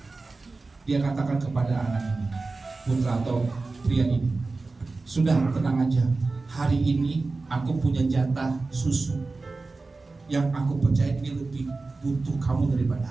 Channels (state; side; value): quieter; left; 3.6 dB